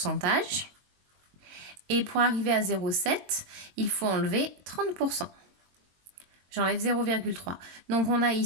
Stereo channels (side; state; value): left; late; 22 ms